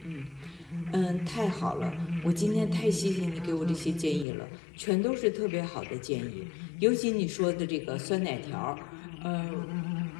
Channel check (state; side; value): drops out; right; at 4.2 s